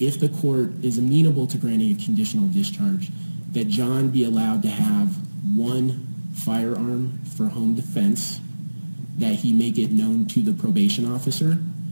the court is amenable to granting a conditional discharge, that John be allowed to have one firearm for home defense, that he make it known to the probation officer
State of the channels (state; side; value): inverted; both; correlation -1.00